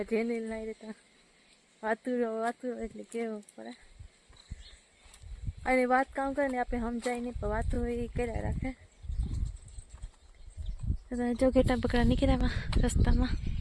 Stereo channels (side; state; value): both; identical; correlation 1.00